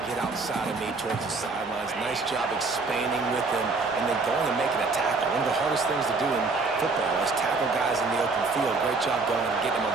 get outside of me towards the sidelines. Nice job expanding with him and then going and making a tackle. One of the hardest things to do in football is tackle guys in the open field. Great job going and getting them on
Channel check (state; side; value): quieter; left; 3.9 dB